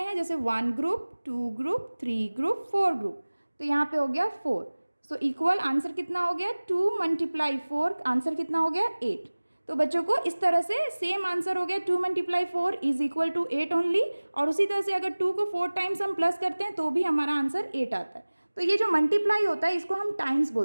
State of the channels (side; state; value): both; inverted; correlation -1.00